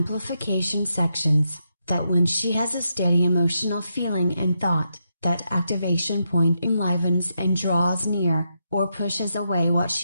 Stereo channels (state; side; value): inverted; both; correlation -0.83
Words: sections that when she has a steady emotional feeling and thought, that activation point enlivens and draws near, or pushes away what